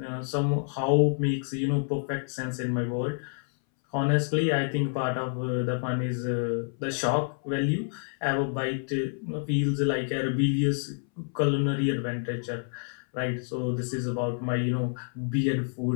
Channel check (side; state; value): right; silent; 59 dB below the other